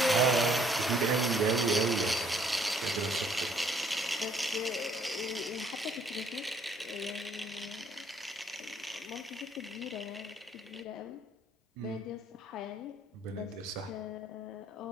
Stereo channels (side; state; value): both; normal; correlation 0.64